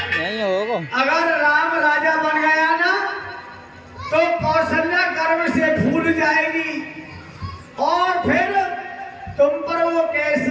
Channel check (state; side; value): identical; both; correlation 1.00